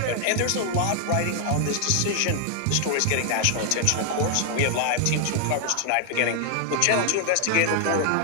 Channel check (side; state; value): both; different; correlation 0.00